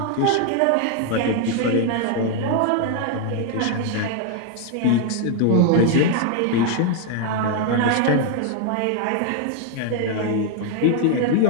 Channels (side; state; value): both; different; correlation 0.00